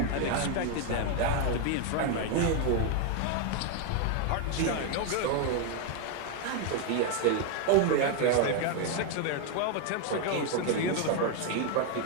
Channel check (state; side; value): different; both; correlation 0.01